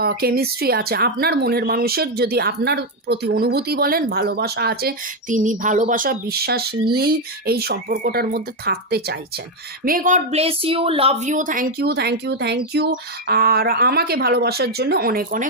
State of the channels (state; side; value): normal; both; correlation 0.04